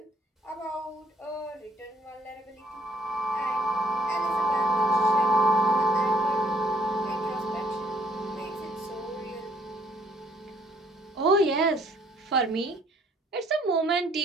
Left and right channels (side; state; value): both; normal; correlation 0.64